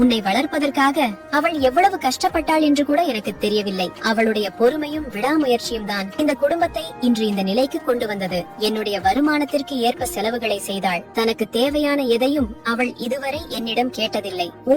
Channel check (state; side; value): identical; both; correlation 1.00